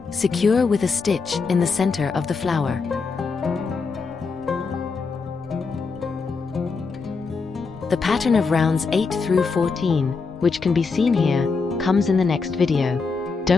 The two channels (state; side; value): quieter; right; 4.7 dB